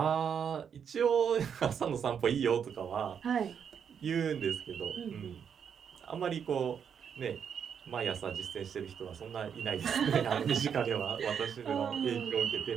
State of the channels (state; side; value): quieter; left; 7.5 dB